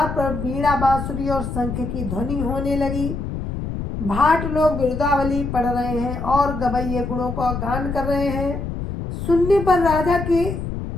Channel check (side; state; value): left; noise; rumble, 5 dB below the sound